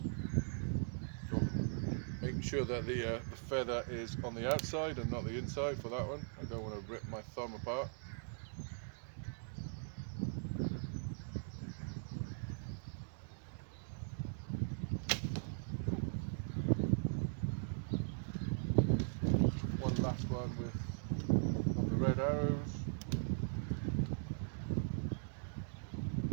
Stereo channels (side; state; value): left; silent; digital silence